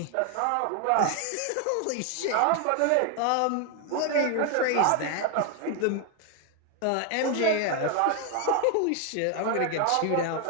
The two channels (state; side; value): different; both; correlation 0.01